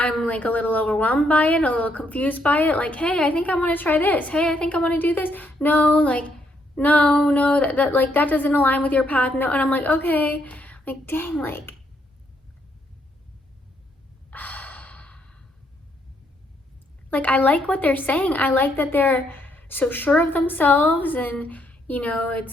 like a little overwhelmed by it, a little confused by it. Like, hey, I think I want to try this. Hey, I think I want to do this. No, like, no, that like, that doesn't align with your path. No. And I'm like, okay, like, dang, like, I like what they're saying. I like that they're so sure of themselves, and,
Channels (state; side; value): normal; both; correlation 0.73